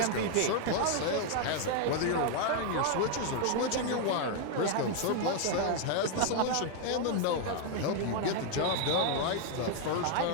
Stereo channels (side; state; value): both; different; correlation 0.00